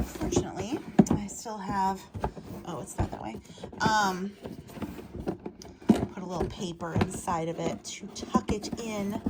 fortunately, I still have, oh, it's not that way. Put a little paper inside of it to tuck it in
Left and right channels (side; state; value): both; identical; correlation 1.00